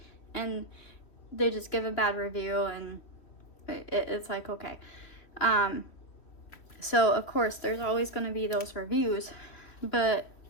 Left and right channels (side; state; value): right; late; 3.1 ms